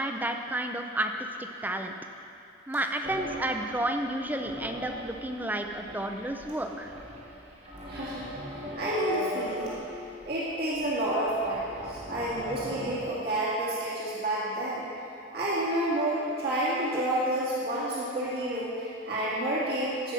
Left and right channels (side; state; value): both; normal; correlation 0.25